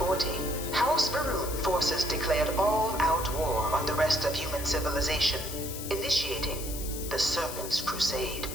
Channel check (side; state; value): left; noise; hiss, 9 dB below the sound